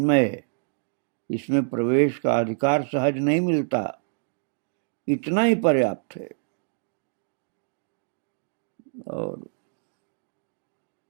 है, इसमें प्रवेश का अधिकार सहज नहीं मिलता, इतना ही पर्याप्त है। और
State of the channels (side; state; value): left; silent; digital silence